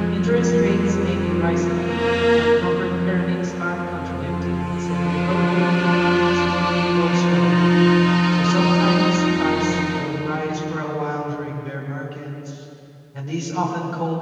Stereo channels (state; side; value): identical; both; correlation 1.00